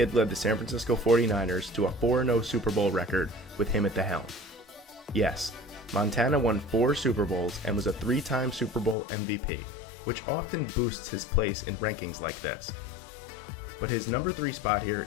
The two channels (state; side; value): drops out; right; at 9.0 s